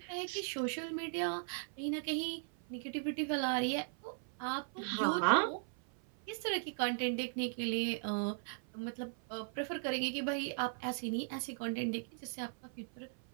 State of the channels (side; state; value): left; silent; 52 dB below the other